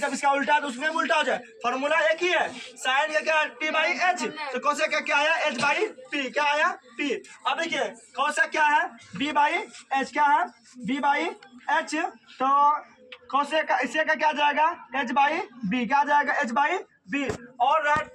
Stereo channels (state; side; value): identical; both; correlation 1.00